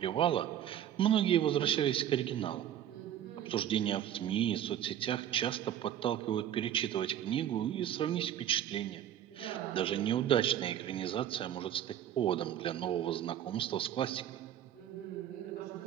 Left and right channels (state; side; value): quieter; left; 10.8 dB